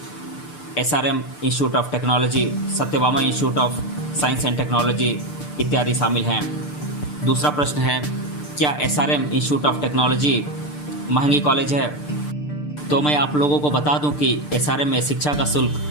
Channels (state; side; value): late; right; 6.7 ms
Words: SRM institute of technology, Satyabhama institute of science and technology इत्यादि शामिल हैं। दूसरा प्रश्न है, क्या SRM इंस्टीट्यूट ऑफ टेक्नोलॉजी महंगी कॉलेज है? तो मैं आप लोगों को बता दूं कि SRM में शिक्षा का शुल्क